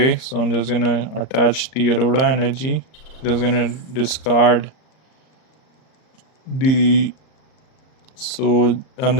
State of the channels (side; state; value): right; late; 38 ms